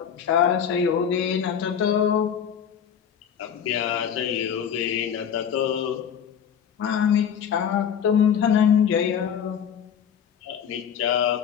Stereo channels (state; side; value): quieter; right; 8.2 dB